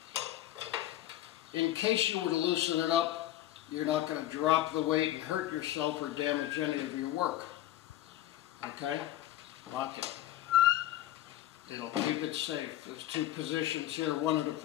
In case you were to loosen it up, you're not going to drop the weight and hurt yourself or damage any of your work. Okay? Lock it. It'll keep it safe. There's two positions here, one at a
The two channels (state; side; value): quieter; right; 13.7 dB